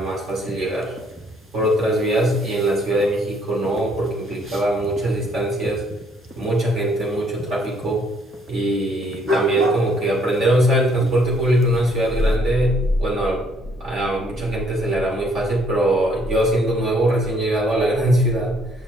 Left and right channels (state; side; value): normal; both; correlation 0.65